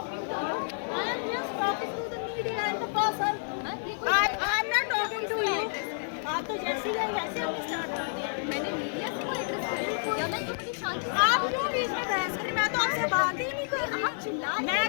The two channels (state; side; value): silent; right; digital silence